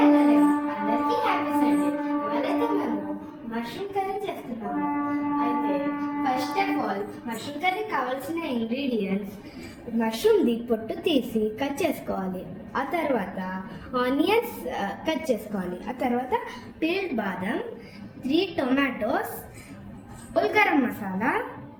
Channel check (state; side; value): identical; both; correlation 1.00